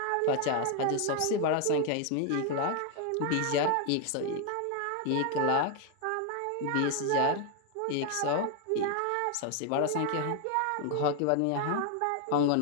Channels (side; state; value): both; different; correlation 0.01